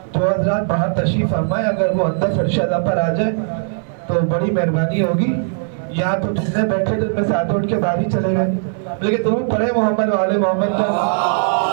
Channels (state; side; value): silent; left; 67 dB below the other